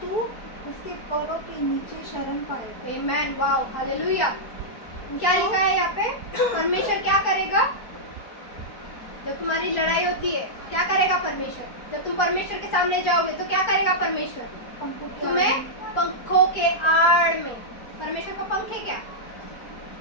तू उसके पैरों के नीचे शरण पाएगा। आमेन, वाओ, हालेलुया। क्या लिखा है यहाँ पे? परमेश्वर क्या करेगा जब तुम्हारी लड़ाई होती है? क्या करेगा परमेश्वर? जब तुम परमेश्वर के सामने जाओगे तो क्या करेगा परमेश्वर? तुम्हें पंखों के आड़ में। परमेश्वर का पंख है क्या?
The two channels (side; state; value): right; late; 4.4 ms